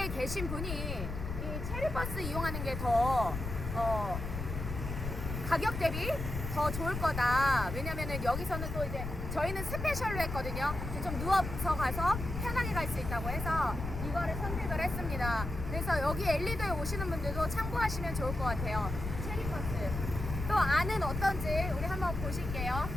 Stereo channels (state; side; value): noise; left; rumble, 5 dB below the sound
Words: 계신 분이 이 체리버스 이용하는 게 더 가격 대비 더 좋을 거다. 왜냐면은 여기서는 또 이제 저희는 스페셜로 했거든요. 좀 누워서 가서 편하게 갈 수 있다고 해서 이거를 선택을 했습니다. 그래서 여기 엘리도에 오시는 분들도 참고하시면 좋을 것 같아요. 체리버스. 또 안은 어떤지 우리 한번 보실게요.